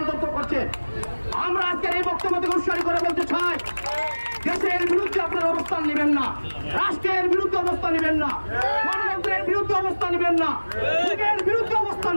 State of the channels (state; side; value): inverted; both; correlation -1.00